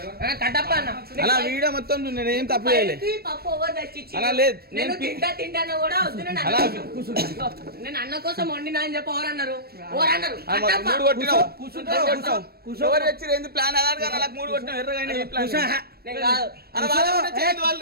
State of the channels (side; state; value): left; late; 0.45 ms